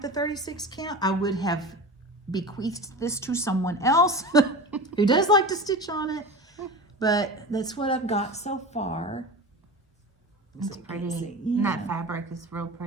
36 count, I would have bequeathed this to someone else who does like to stitch on it. But that's what I've got so far. It's So you pretty. can see. And that fabric is real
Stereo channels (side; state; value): both; normal; correlation 0.30